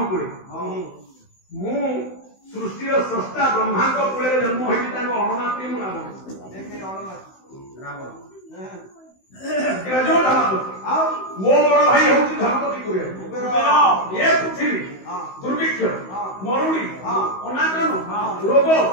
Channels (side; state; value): right; late; 16 ms